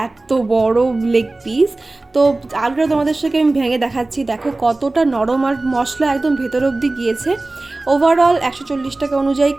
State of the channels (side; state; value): left; quieter; 3.0 dB